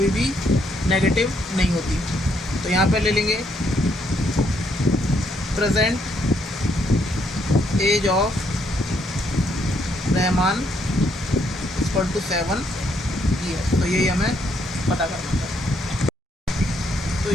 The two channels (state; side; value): normal; both; correlation 0.73